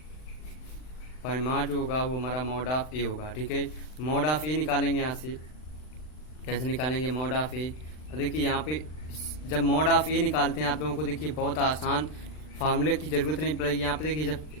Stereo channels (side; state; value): right; late; 39 ms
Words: परिमाण जो होगा वो हमारा मॉड ऑफ ए होगा, ठीक है। मॉड ऑफ ए निकालेंगे यहाँ से, कैसे निकालेंगे मॉड ऑफ ए। देखिए यहाँ पे जब मॉड ऑफ ए निकालते हैं आप लोगों को देखिए बहुत आसान, फार्मूले की जरूरत नहीं पड़ेगी। यहाँ पे देखिए जब